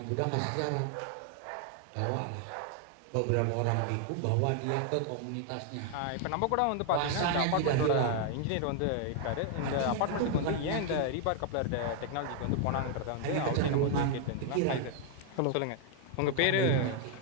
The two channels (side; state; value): both; different; correlation 0.00